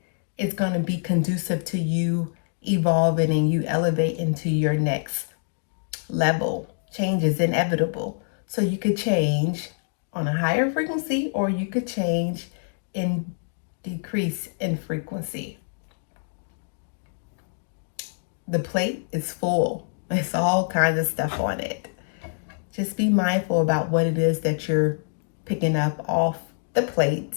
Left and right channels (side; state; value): right; silent; digital silence